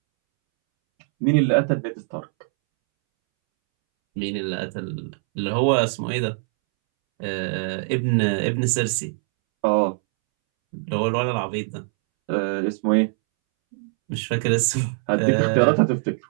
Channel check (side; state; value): left; silent; 64 dB below the other